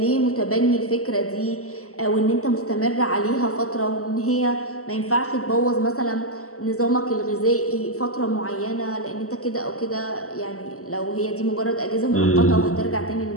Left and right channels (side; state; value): right; late; 0.64 ms